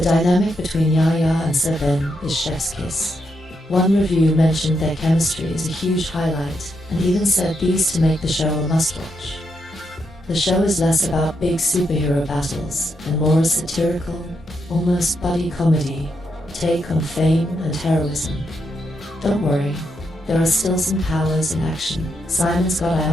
dynamic between Yahya and Sir Ben is chef's kiss. One review mentioned their chemistry as a huge highlight, and even said these to make the show a must-watch. The show is less about big superhero battles and more a satirical, almost buddy comedy take on fame and heroism. Don't worry, there are still some powers in action. Simon's got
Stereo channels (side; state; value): both; normal; correlation 0.81